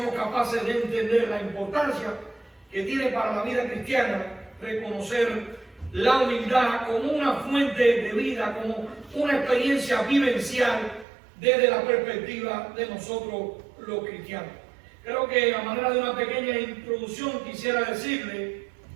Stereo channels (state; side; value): drops out; left; at 11.1 s